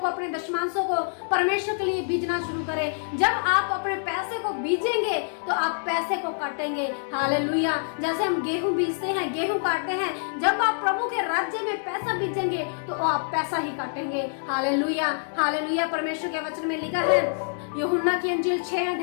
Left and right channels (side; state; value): right; silent; digital silence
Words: अपने दशमांशों को परमेश्वर के लिए बीजना शुरू करें। जब आप अपने पैसे को बीजेंगे तो आप पैसे को काटेंगे। हालेलुया। जैसे हम गेहूं बीजते हैं, गेहूं काटते हैं, जब आप प्रभु के राज्य में पैसा बीजेंगे तो आप पैसा ही काटेंगे। Hallelujah, hallelujah. परमेश्वर के वचन में लिखा है, यूहन्ना की अंजील 6